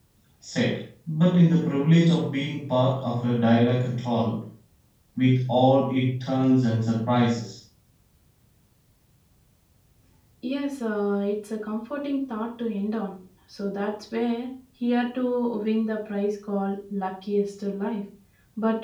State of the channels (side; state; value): both; identical; correlation 1.00